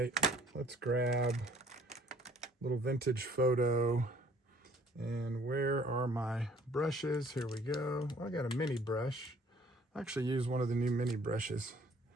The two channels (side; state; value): both; normal; correlation 0.58